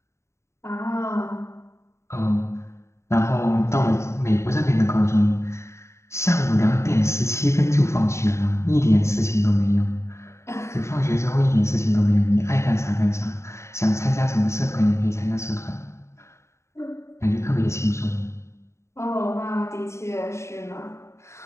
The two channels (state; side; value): late; right; 0.14 ms